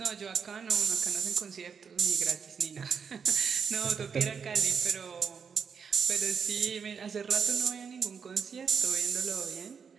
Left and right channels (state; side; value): quieter; left; 6.3 dB